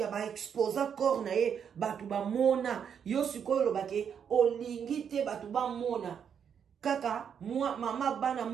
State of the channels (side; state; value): left; quieter; 7.7 dB